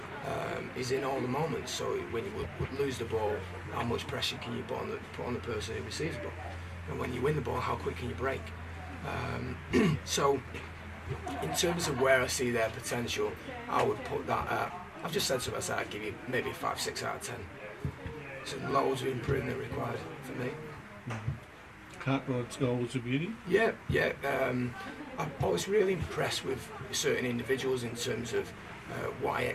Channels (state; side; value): identical; both; correlation 1.00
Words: is in all the moments. So when you would lose the ball, how much pressure can you put on the person who receives the ball? And when you win the ball, how quick can you break? So in terms of where I see their potential, I would put that at, I've just said to myself, I'd give you maybe 5, 6 out of 10. So loads of improvement required for me. Cartwright's goal was a beauty? Yeah. I was really impressed with certain individuals in terms of what I